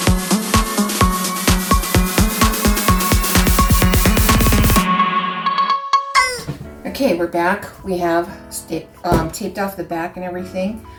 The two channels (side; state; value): both; identical; correlation 1.00